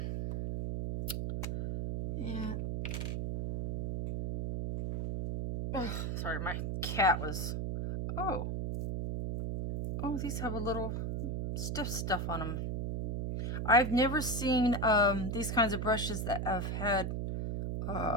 Yeah. Oh, sorry, my cat was. Oh, these have a little stiff stuff on them. I've never seen these kinds of brushes that have had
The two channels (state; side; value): noise; right; hum, 1 dB below the sound